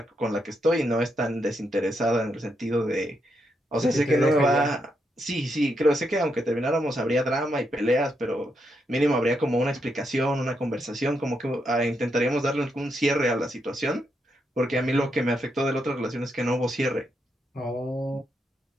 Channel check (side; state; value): both; normal; correlation 0.80